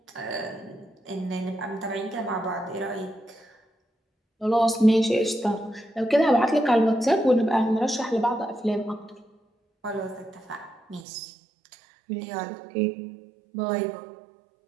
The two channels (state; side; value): drops out; left; at 11.1 s